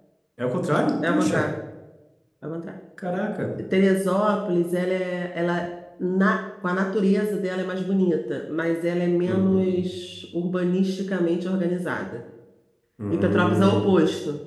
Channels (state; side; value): identical; both; correlation 1.00